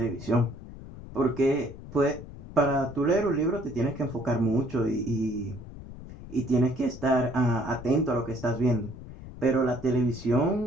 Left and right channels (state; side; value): noise; left; rumble, 14 dB below the sound